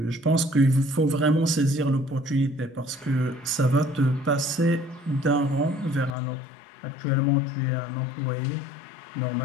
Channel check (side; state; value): right; drops out; at 6.1 s